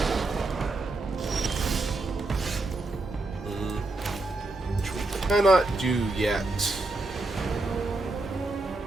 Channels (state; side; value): quieter; left; 3.0 dB